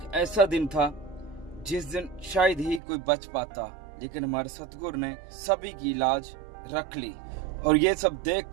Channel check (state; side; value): drops out; left; at 2.8 s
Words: ऐसा दिन था जिस दिन शायद ही कोई बच पाता, लेकिन हमारे सतगुरु ने सभी की लाज रख ली। और ये सब